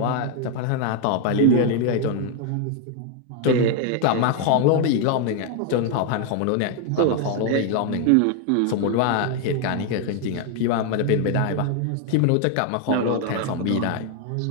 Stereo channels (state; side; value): different; both; correlation 0.00